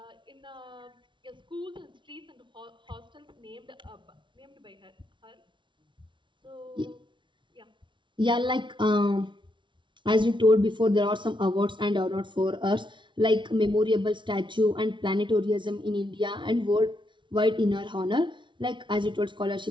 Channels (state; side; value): late; left; 0.24 ms